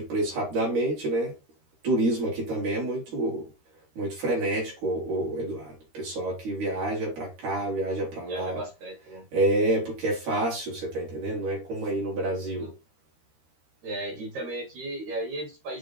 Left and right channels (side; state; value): left; late; 13 ms